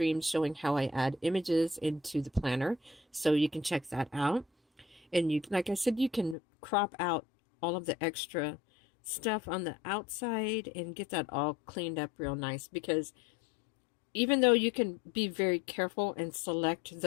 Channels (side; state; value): right; drops out; at 6.4 s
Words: showing how I add images into the planner. So you can check that out. And you, like I said, you can crop out all of the extra stuff on the outside and get that all cleaned up real nice, because even though you can be very careful and select